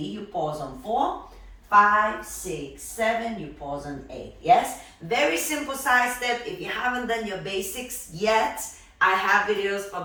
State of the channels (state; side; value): identical; both; correlation 1.00